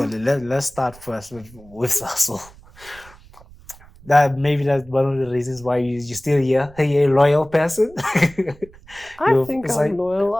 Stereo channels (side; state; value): right; noise; rumble, 23 dB below the sound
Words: let's start first with Sasol. That's one of the reasons why you're still here. Are you a loyal person? I think I'm loyal.